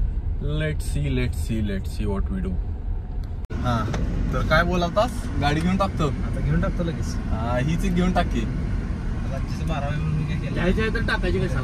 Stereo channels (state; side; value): identical; both; correlation 1.00